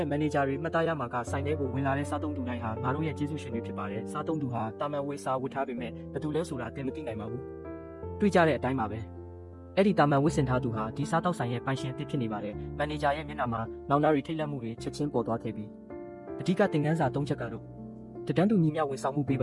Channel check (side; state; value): both; identical; correlation 1.00